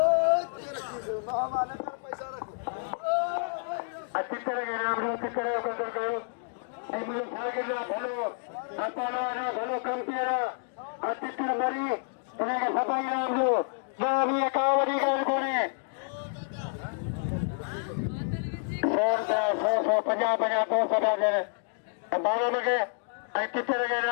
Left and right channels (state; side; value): silent; right; digital silence